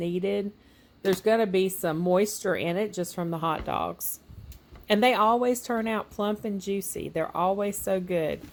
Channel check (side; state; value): both; identical; correlation 1.00